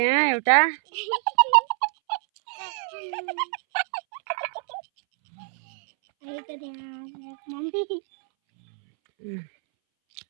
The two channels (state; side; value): silent; left; 61 dB below the other